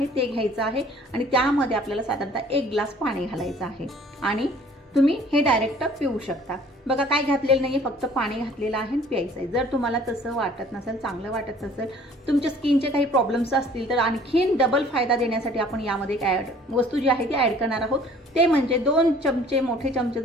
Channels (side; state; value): both; normal; correlation 0.53